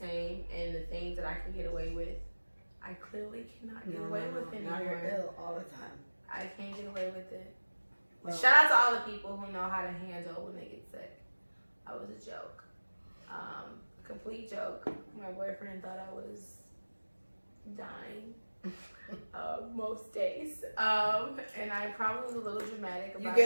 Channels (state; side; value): inverted; both; correlation -1.00